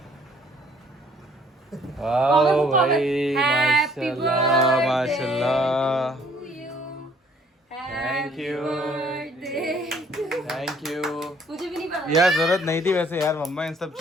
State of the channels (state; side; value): normal; both; correlation 0.60